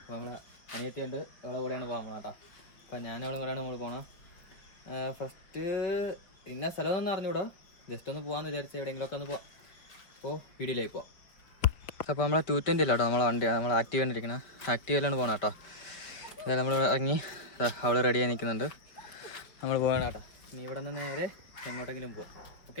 നമ്മളെ അനിയത്തിയുണ്ട്, അവളെ കൂടെയാണ് പോകാൻ കേട്ടോ. അപ്പം ഞാനവളും കൂടെയാണ് നമ്മൾ പോകണം. ഫസ്റ്റ് ഇന്ന സ്ഥലമൊന്നും അറിഞ്ഞൂടാ, ജസ്റ്റ് ഒന്ന് പോകാമെന്ന് വിചാരിച്ച് എവിടെയെങ്കിലുമൊക്കെ ഒന്ന് പോവാം. അപ്പോൾ വീഡിയോയിലേക്ക് പോവാം. അപ്പോൾ നമ്മളെ 220 ഇല്ല കേട്ടോ, നമ്മളെ വണ്ടിയാണ്, നമ്മൾ ആക്റ്റീവ് കണ്ടിരിക്കുന്നത്. ആക്റ്റീവിലാണ് പോകണം കേട്ടോ. അതായത് നമ്മൾ ഇറങ്ങി, അവൾ റെഡിയായി നിൽക്കുന്നുണ്ട്, നമ്മൾ പോകണം കേട്ടോ. ഇനി ഇവിടെ നിന്ന് നേരെ എങ്ങോട്ടെങ്കിലും പോവാം.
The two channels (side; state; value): right; late; 5.0 ms